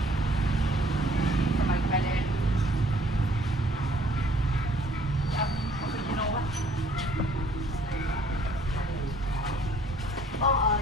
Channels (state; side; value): normal; both; correlation 0.59